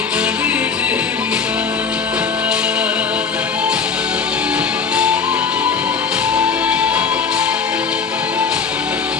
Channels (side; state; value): right; quieter; 5.6 dB